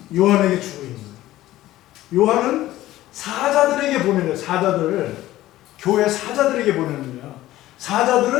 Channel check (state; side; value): quieter; right; 15.4 dB